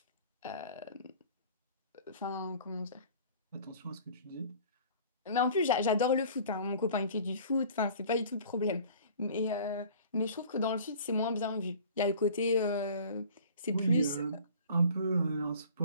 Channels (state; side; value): inverted; both; correlation -0.47